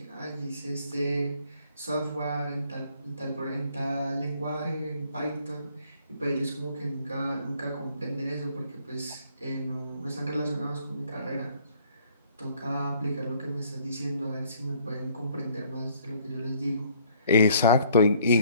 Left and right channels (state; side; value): inverted; both; correlation -0.61